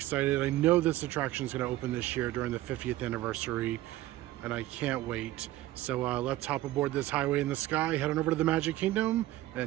I know this attraction is going to open this year during the 50th anniversary, and I can't wait. So let's hop aboard this highway in the sky, head on over to the Magic Kingdom,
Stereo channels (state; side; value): quieter; left; 15.9 dB